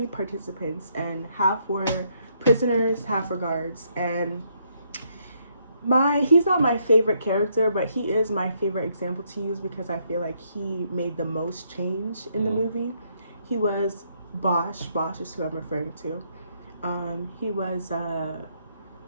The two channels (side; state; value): both; inverted; correlation -0.73